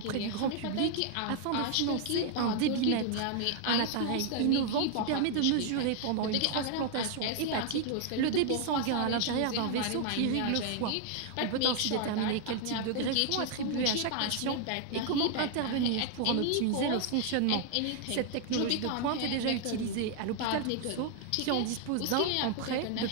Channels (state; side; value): different; both; correlation 0.00